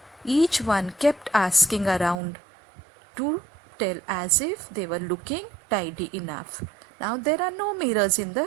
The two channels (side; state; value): left; drops out; at 2.1 s